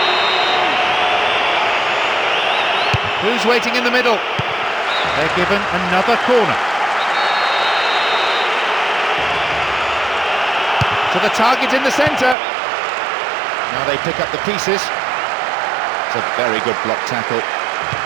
Who's waiting in the middle? They're given another corner. To the target in the centre. Now they pick up the pieces. It's a very good block tackle.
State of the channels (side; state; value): left; drops out; at 12.4 s